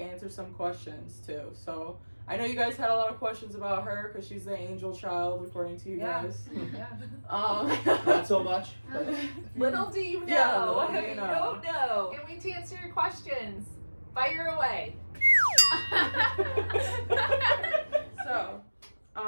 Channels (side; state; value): both; inverted; correlation -1.00